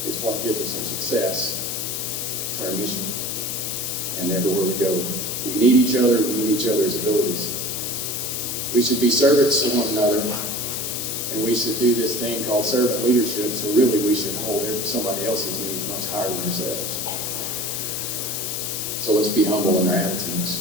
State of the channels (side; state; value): left; noise; hiss, 3 dB below the sound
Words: It's what gives us our success to our mission and everywhere we go. We need each other. We need each other's abilities. We should be servants to one another, and we should do this thing called servant leadership, so really we should hold somebody else's needs much higher than ourselves. So let's be humble in our attitudes.